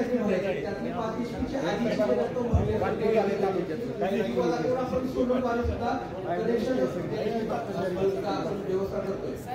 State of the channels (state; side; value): identical; both; correlation 1.00